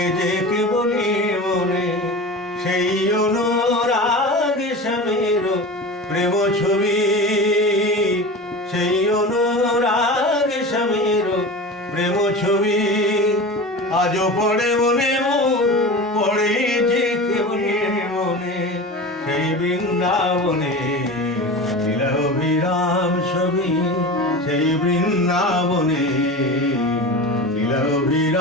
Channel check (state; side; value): normal; both; correlation 0.31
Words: যে কেবলি মনে সেই অনুরাগ স্বামীর প্রেম ছবি, সেই অনুরাগ স্বামীর প্রেম ছবি। আজও পড়ে মনে পড়ে যে কেবলি মনে সেই বৃন্দাবনে লীলা অভিরাম ছবি, সেই বৃন্দাবনে লীলা